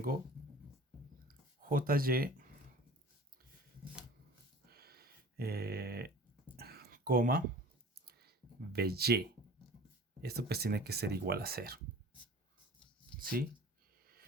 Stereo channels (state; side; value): normal; both; correlation 0.43